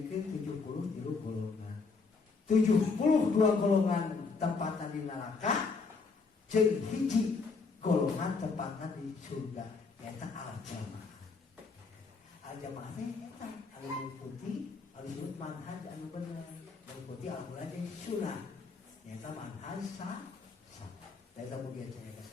73 golongan. 72 golongan tempatan di neraka jeung hiji golongan tempatan di surga. Eta al-jamaah. Al-jamaah teh eta anu mengikuti anu disebut manhaj anu bener, mengikuti Al-Qur'an jeung sunnah. Eta manhaj salaf. Eta mugia cenah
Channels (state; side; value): quieter; right; 4.5 dB